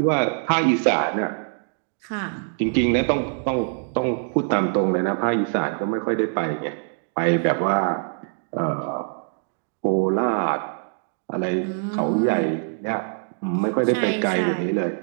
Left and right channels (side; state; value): left; silent; digital silence